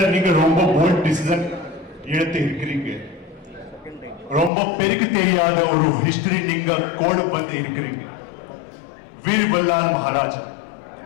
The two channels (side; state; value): right; drops out; at 4.5 s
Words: நீங்க ரொம்ப bold decision எடுத்து இருக்கிறீங்க. ரொம்ப பெருக்கு தெரியாத ஒரு history நீங்க கோடு பண்ணி இருக்கிறீங்க. வீர் வல்லால் மகாராஜா